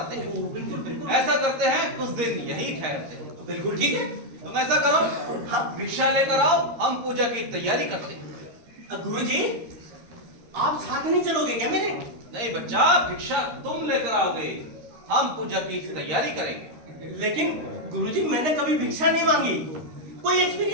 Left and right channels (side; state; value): left; late; 13 ms